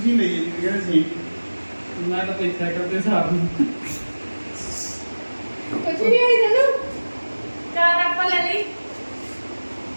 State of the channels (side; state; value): both; inverted; correlation -1.00